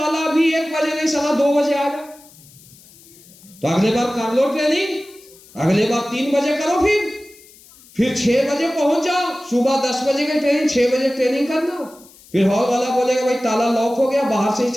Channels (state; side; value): noise; left; hiss, 24 dB below the sound